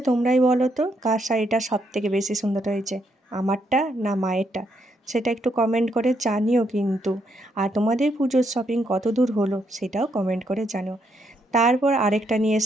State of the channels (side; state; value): both; normal; correlation 0.76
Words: তোমরাই বলো তো কার শাড়িটা সব থেকে বেশি সুন্দর হয়েছে, আমারটা না মায়েরটা? সেটা একটু কমেন্ট করে জানিও কিন্তু। আর তোমাদের পুজোর শপিং কত দূর হলো সেটাও কমেন্ট করে জানিও। তারপর আরেকটা নিয়ে